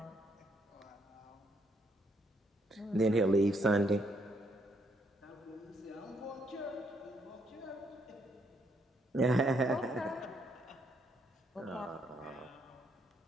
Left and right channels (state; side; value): normal; both; correlation 0.73